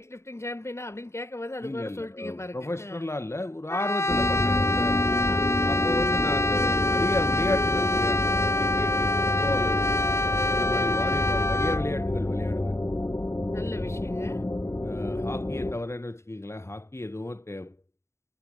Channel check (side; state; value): right; late; 0.13 ms